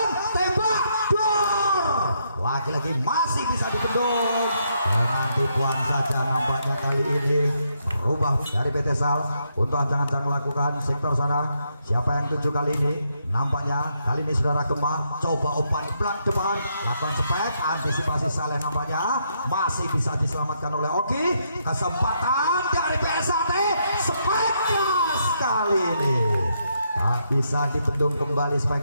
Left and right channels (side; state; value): both; inverted; correlation -0.77